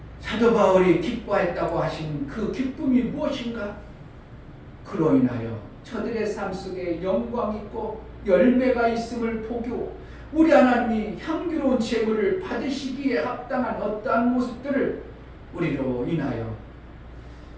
사도 바울이 기뻐했다고 하신 그 기쁨이 무엇인가? 그로 인하여 저들의 삶 속에 영광 있고 열매가 있음을 보고 우리 하나님이 향기로운 재물을 받으시기에 합당한 어떠한 모습들을 우리로 인하여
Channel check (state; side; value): identical; both; correlation 1.00